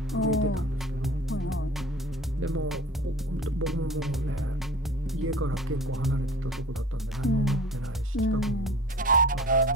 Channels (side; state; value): both; normal; correlation 0.41